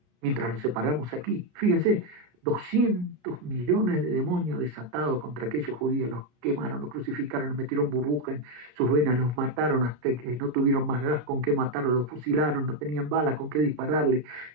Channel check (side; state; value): left; late; 33 ms